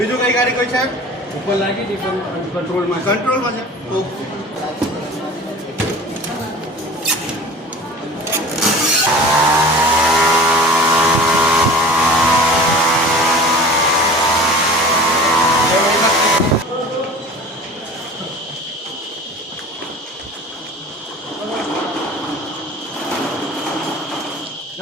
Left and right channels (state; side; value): normal; both; correlation 0.40